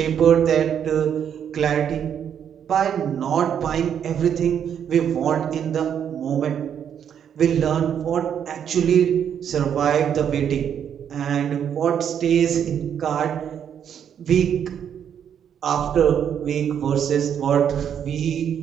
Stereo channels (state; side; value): quieter; left; 8.6 dB